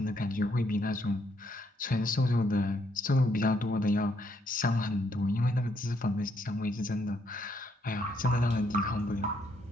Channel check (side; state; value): both; normal; correlation 0.73